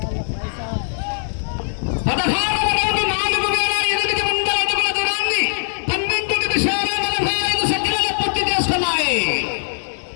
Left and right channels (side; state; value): right; silent; 65 dB below the other